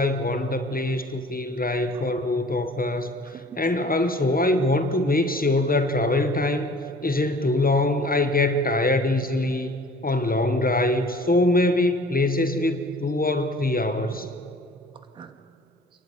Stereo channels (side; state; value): both; normal; correlation 0.49